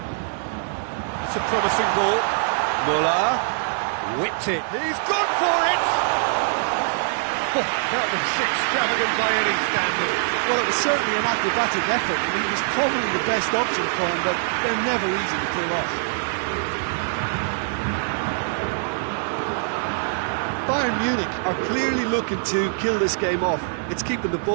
It's a promising ball. Muller whipped it. He's gone for it! Oh, that was extravagant by any standard. Well, it was certainly an acrobatic effort. I mean, it was probably the best option for him, but they're never easy to pull off. Bayern Munich are clearly looking to kill this game off. It's keeping the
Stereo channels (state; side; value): silent; left; 59 dB below the other